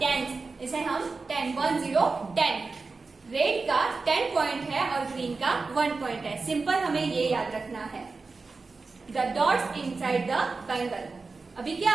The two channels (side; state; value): left; quieter; 4.1 dB